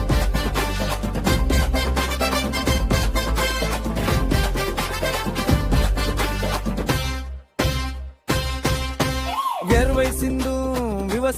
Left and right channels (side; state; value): both; identical; correlation 1.00